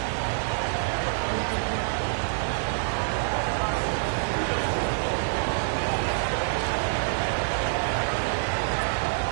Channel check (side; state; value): left; silent; digital silence